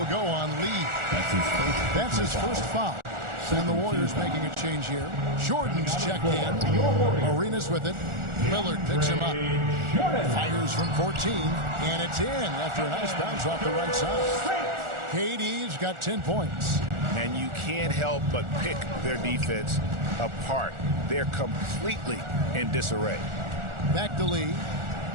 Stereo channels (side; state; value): left; late; 1.4 ms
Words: go on Lee. That's his first foul. And the Warriors making a change here. Jordan's checked in. Arenas with it. Lillard picks him up. Fires from 14. And it's in after a nice bounce off the right side. KD's got 10 points. And you can't help but pick their defense apart. They're completely in disarray. Back to Lee.